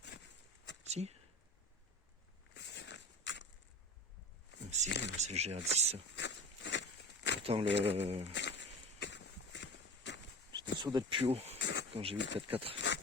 Si? Ah, si, c'est le GR10 ça. Pourtant, j'étais sûr d'être plus haut quand j'ai vu le 4x4.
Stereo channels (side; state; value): both; normal; correlation 0.34